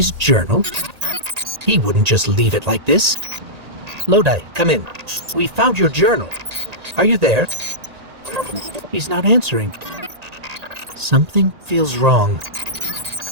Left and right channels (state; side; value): late; left; 1.8 ms